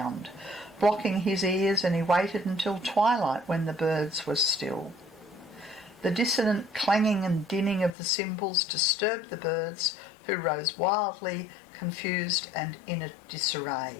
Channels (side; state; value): right; drops out; at 7.9 s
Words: blocking his ears, and he waited until twilight when the birds were still. The dissonant clanging and dinning of the cymbals disturbed the birds, who rose wildly, confused and in a